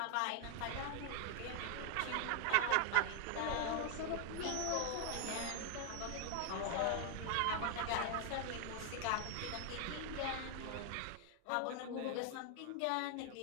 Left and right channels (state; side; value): different; both; correlation 0.00